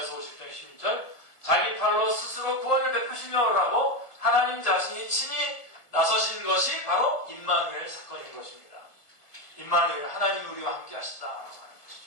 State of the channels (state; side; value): late; right; 1.5 ms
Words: 50장 16절 자기 팔로 스스로 구원을 베푸시며라고 하나님 자신이 친히 나서신 것이 바로 임마누엘 사건인 것입니다. 임마누엘 하나님 우리와 함께 하시다라고 하는